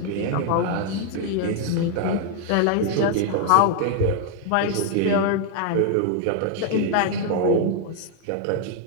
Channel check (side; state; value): both; different; correlation 0.00